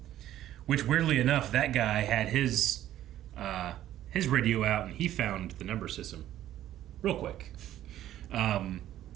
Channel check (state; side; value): quieter; left; 12.7 dB